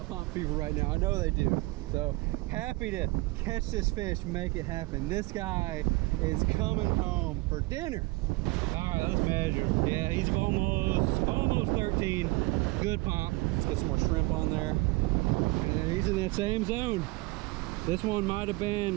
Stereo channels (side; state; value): left; quieter; 22.6 dB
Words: pomp fever right now. I know they do. So happy to catch this fish, make it happen. This guy is coming home for dinner. All right, let's measure him. Yeah, he's almost 13. Good pomp. Let's get some more shrimp on there. And then he's in that same zone. This one might have